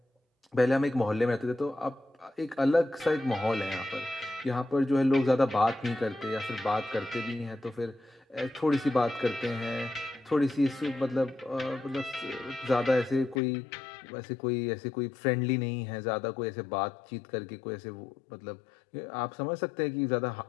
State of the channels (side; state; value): right; drops out; at 13.4 s